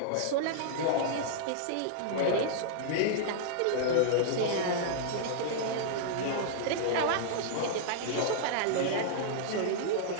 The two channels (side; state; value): both; different; correlation -0.02